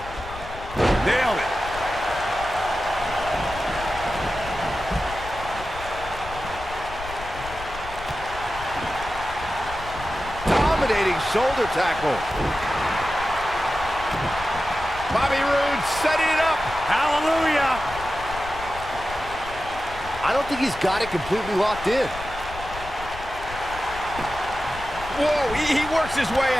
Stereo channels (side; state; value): left; noise; rumble, 13 dB below the sound